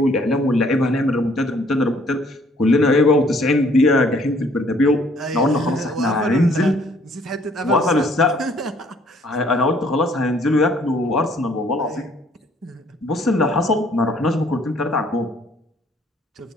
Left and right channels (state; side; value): normal; both; correlation 0.62